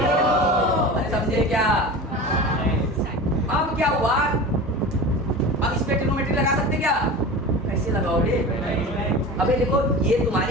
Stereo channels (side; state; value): both; normal; correlation 0.33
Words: अरे समझे क्या? अब क्या हुआ? अब इस पे ट्रिग्नोमेट्री लगा सकते क्या? कैसे लगाओगे? अबे देखो, ये